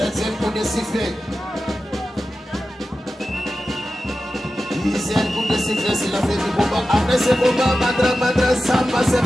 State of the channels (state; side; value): normal; both; correlation 0.93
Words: coup de sifflet. 10e coup de sifflet, c'est la fin du combat. Après ce combat, Mandra Samba s'est